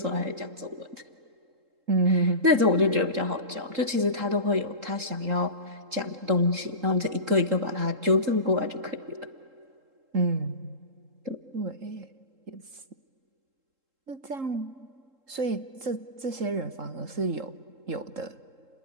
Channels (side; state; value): left; late; 3.7 ms